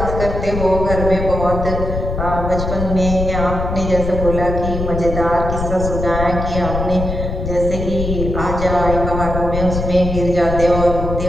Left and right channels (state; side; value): noise; left; rumble, 4 dB below the sound